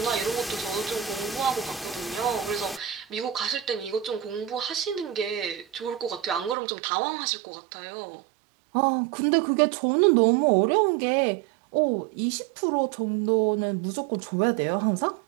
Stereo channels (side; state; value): left; drops out; at 6.6 s